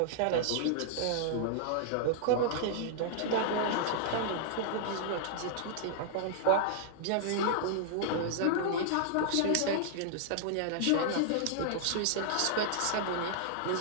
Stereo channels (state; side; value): different; both; correlation -0.01